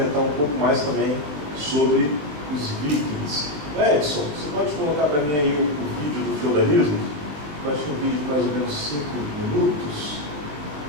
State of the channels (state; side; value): late; left; 20 ms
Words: um pouco mais também sobre os vikings. Edson, você pode colocar para mim aí o vídeo do feudalismo? Eu acho que é um vídeo de mais ou menos 5 minutos,